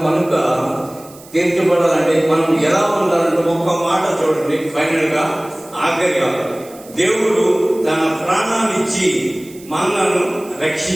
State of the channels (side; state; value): right; noise; hiss, 22 dB below the sound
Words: కనుక తీర్చబడాలంటే మనం ఎలా ఉండాలంటే ఒక్క మాట చూడండి. ఫైనల్ గా ఆఖరిగా దేవుడు తన ప్రాణాన్నిచ్చి మనలను